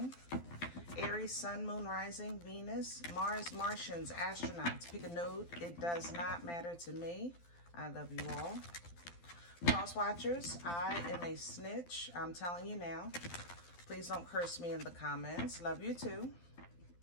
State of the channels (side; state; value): right; late; 12 ms